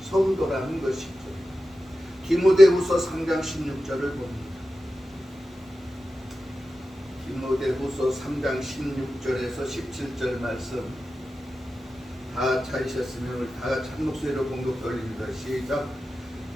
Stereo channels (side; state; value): both; normal; correlation 0.93